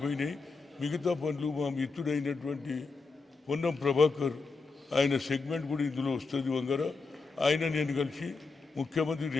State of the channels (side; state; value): right; quieter; 4.2 dB